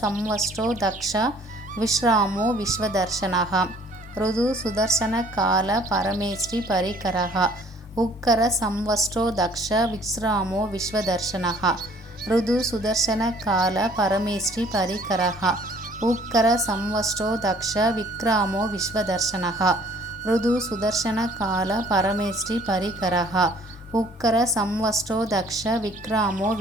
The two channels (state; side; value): normal; both; correlation 0.57